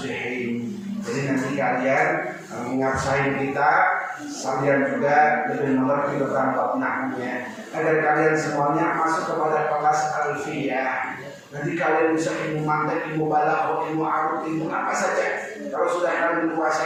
Jadi nanti kalian mengasain kita sambil juga lebih mengerti tentang bab nahwunya, agar kalian semuanya masuk kepada kelas alfiyah. Nanti kalian bisa ilmu mantek, ilmu balaghah, ilmu arut, ilmu apa saja. Kalau sudah kalian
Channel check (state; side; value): identical; both; correlation 1.00